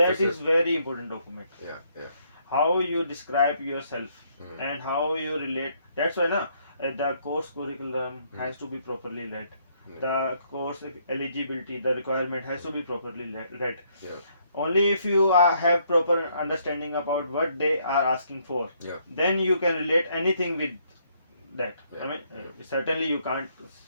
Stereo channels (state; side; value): inverted; both; correlation -0.70